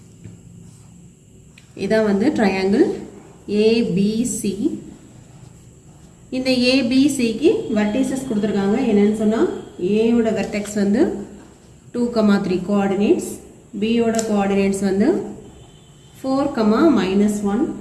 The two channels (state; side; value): identical; both; correlation 1.00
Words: இதான் வந்து triangle ABC. இந்த ABCக்கு vertices கொடுத்துருக்காங்க. என்னன்னு சொன்னால் A ஓட vertex வந்து 2,3 coordinates, B ஓட coordinates வந்து 4,-1